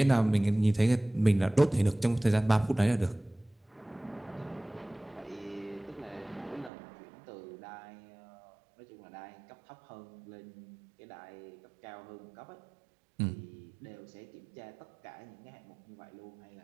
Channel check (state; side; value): drops out; left; at 6.7 s